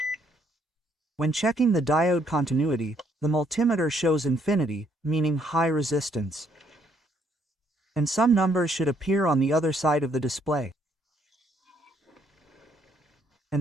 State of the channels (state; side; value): normal; both; correlation 0.69